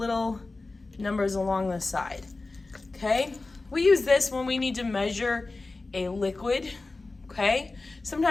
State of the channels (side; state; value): right; quieter; 3.4 dB